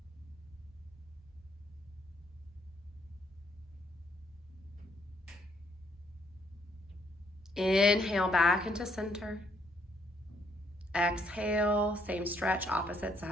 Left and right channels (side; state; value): both; normal; correlation 0.70